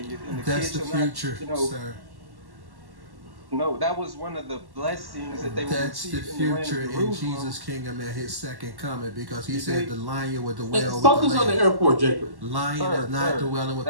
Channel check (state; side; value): late; left; 1.1 ms